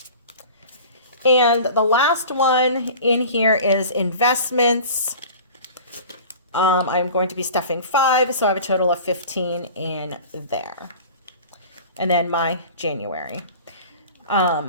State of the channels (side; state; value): both; inverted; correlation -0.40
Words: And the last one in here is investments. I'm going to be stuffing 5, so I have a total of 15 in there. And then my January